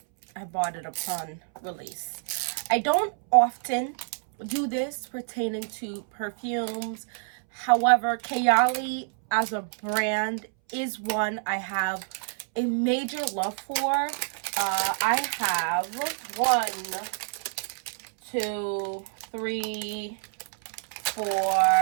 bought it upon release. I don't often do this pertaining to perfumes. However, Kayali as a brand is one I have a major love for. I have 1, 2, 3,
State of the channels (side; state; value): left; silent; 60 dB below the other